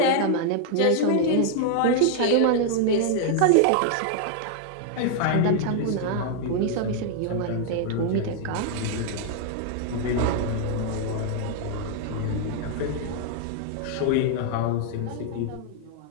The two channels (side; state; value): both; different; correlation -0.01